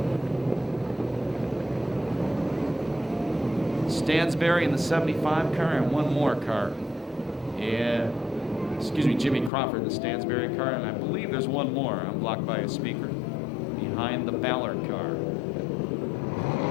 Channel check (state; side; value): drops out; right; at 9.5 s